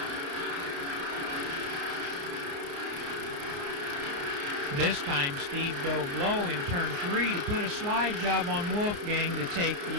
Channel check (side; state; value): left; late; 29 ms